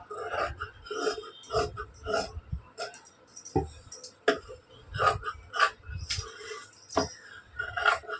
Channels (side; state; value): both; identical; correlation 1.00